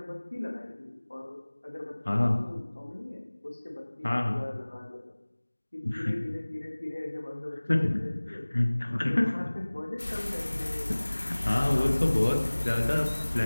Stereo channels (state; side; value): inverted; both; correlation -1.00